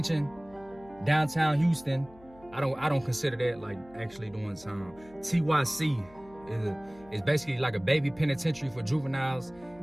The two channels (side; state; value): left; noise; hum, 24 dB below the sound